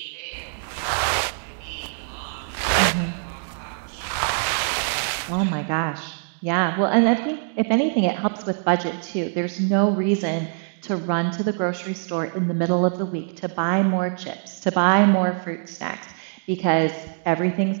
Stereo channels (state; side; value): silent; left; digital silence